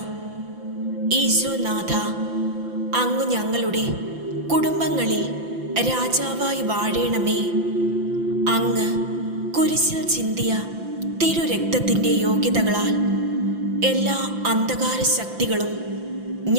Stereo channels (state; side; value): late; left; 5.9 ms